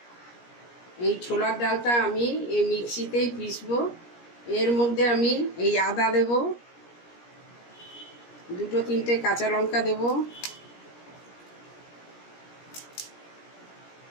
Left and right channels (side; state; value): right; late; 17 ms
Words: এই ছোলার ডালটা আমি এই মিক্সিতেই পিসবো। এর মধ্যে আমি এই আদা দেব, 2-3টে কাঁচা লঙ্কা দেব,